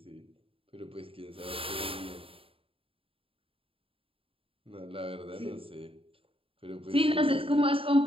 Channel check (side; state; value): left; late; 0.27 ms